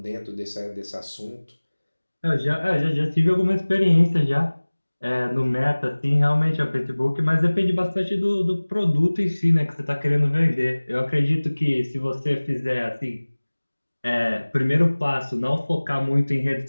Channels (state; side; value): inverted; both; correlation -1.00